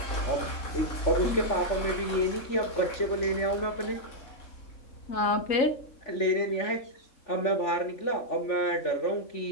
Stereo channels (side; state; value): right; late; 3.4 ms